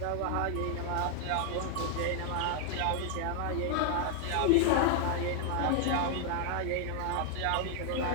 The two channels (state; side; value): different; both; correlation 0.00